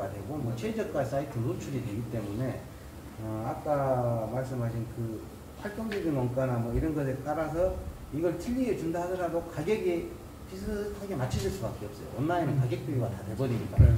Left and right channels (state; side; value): identical; both; correlation 1.00